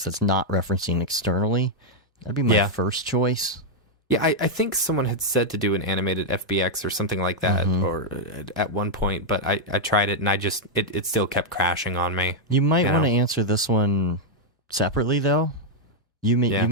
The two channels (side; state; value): both; normal; correlation -0.02